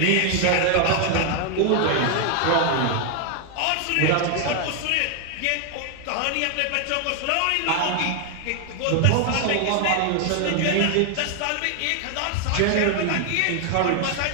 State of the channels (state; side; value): different; both; correlation 0.01